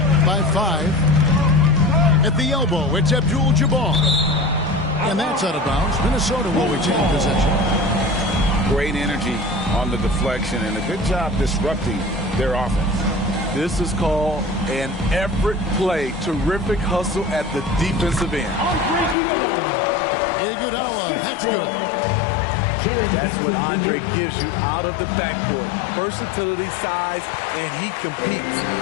by 5. At the elbow, it's Abdul-Jabbar. And that's out of bounds. Minnesota will retain possession. Great energy on the deflection and a good job disrupting their offense. This is called an effort play. Terrific hustle at the defensive end. Iguodala, that's good. That's what Andre gives you out of the backcourt. Versatility, size, and he competes.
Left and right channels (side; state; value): right; drops out; at 19.2 s